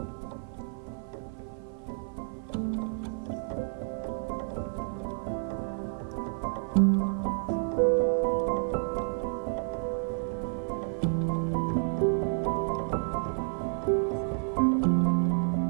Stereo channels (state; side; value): silent; left; 58 dB below the other